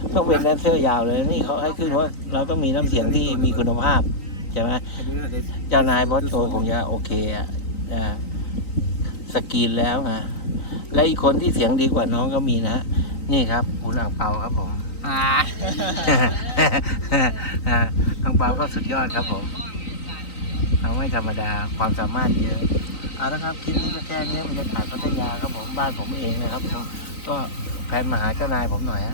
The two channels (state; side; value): late; right; 3.9 ms